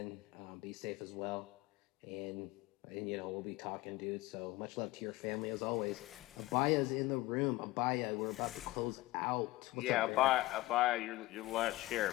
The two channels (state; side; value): quieter; right; 19.0 dB